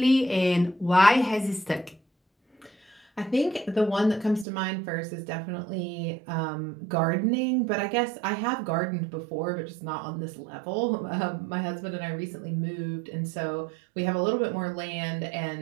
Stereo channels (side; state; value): left; drops out; at 4.5 s